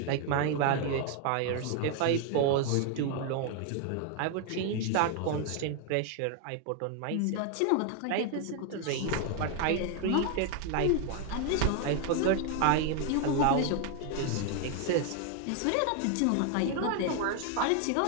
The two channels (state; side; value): different; both; correlation 0.01